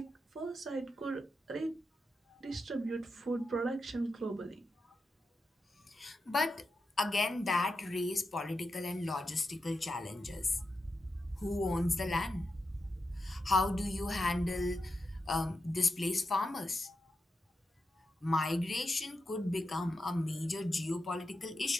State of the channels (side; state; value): both; normal; correlation 0.88